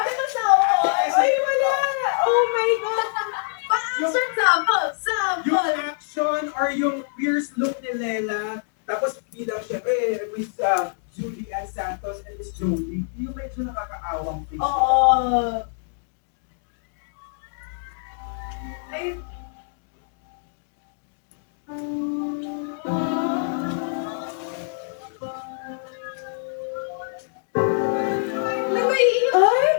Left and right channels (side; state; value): right; silent; digital silence